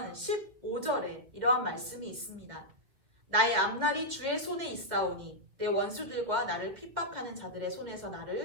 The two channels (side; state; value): left; late; 2.1 ms